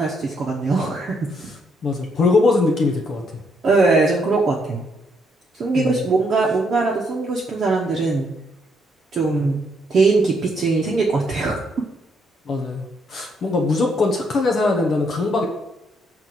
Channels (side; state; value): both; normal; correlation 0.73